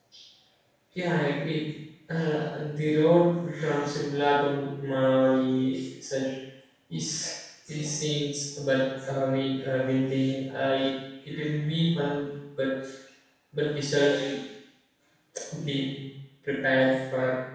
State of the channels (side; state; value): both; identical; correlation 1.00